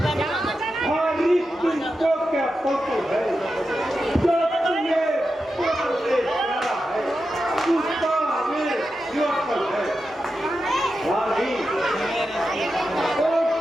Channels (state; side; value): normal; both; correlation 0.90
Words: हमारी तुमको क्या फोटो है जो तुम्हें प्यार से प्यारा है उसका हमें योगपल है हमारी ओ